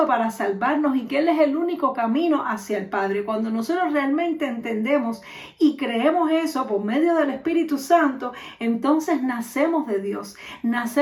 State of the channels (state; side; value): identical; both; correlation 1.00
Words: para salvarnos y que Él es el único camino hacia el Padre. Cuando nosotros realmente entendemos y creemos eso por medio del Espíritu Santo, entonces nacemos de Dios,